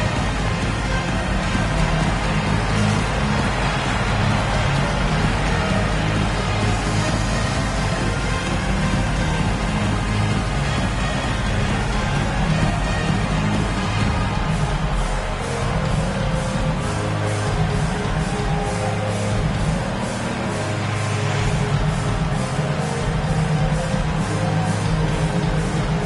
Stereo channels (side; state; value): both; identical; correlation 1.00